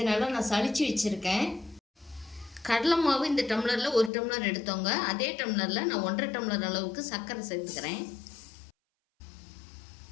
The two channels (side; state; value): right; drops out; at 4.1 s